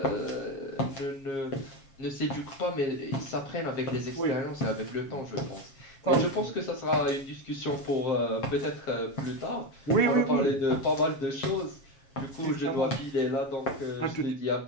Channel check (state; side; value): late; right; 7.4 ms